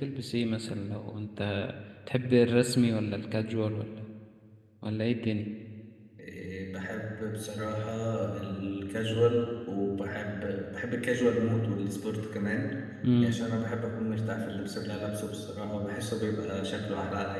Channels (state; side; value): identical; both; correlation 1.00